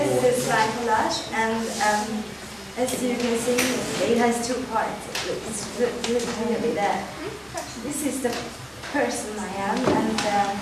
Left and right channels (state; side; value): identical; both; correlation 1.00